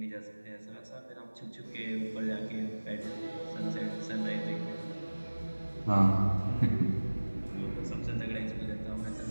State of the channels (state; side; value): inverted; both; correlation -1.00